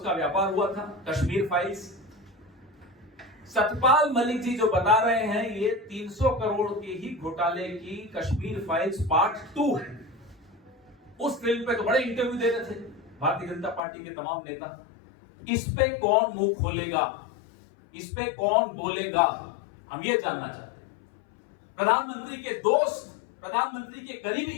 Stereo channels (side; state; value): right; drops out; at 13.8 s